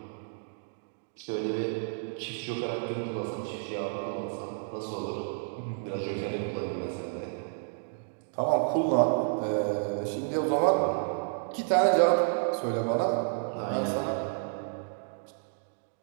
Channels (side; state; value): left; silent; digital silence